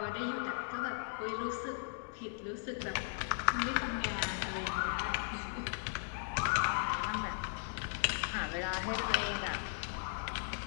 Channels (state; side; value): silent; right; digital silence